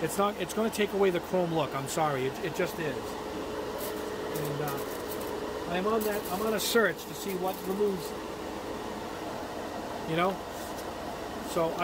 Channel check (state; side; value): identical; both; correlation 1.00